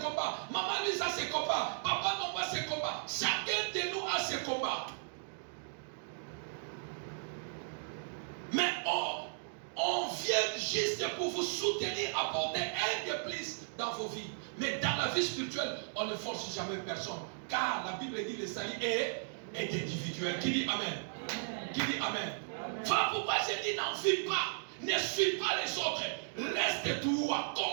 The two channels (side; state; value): left; silent; digital silence